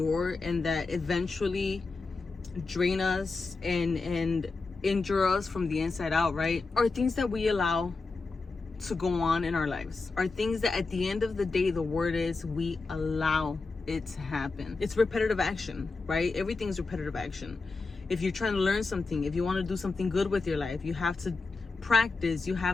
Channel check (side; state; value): right; quieter; 3.9 dB